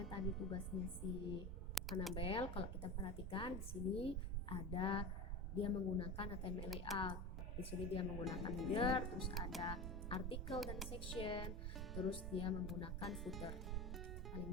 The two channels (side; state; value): both; normal; correlation 0.27